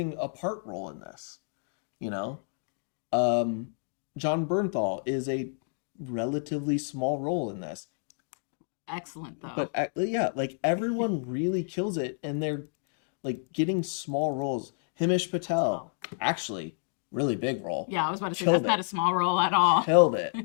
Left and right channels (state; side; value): silent; right; digital silence